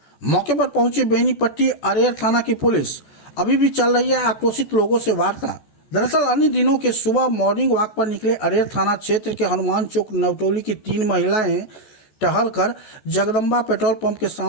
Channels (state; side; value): late; right; 14 ms